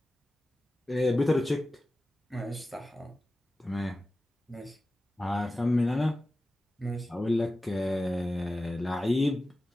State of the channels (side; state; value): both; normal; correlation 0.95